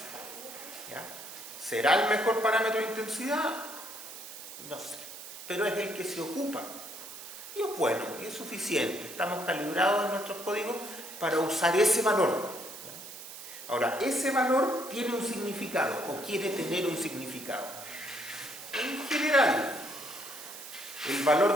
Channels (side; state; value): right; noise; hiss, 12 dB below the sound